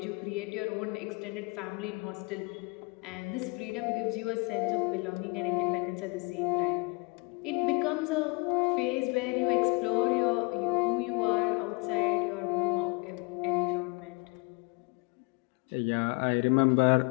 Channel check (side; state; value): right; quieter; 29.9 dB